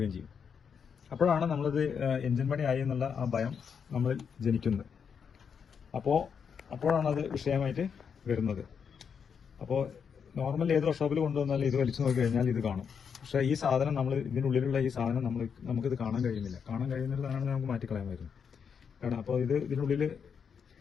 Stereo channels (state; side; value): quieter; right; 6.8 dB